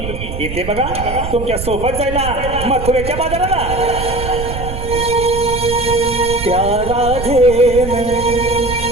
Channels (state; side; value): noise; right; rumble, 7 dB below the sound